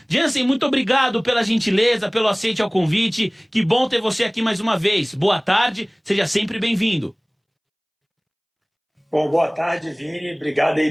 Jansen, muito obrigado pela gentileza, pelo aceite ao convite. Que bom ter você aqui mais uma vez. Boa tarde, seja sempre bem-vindo. Bom, boa tarde, Vini. Obrigado aí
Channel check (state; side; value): identical; both; correlation 1.00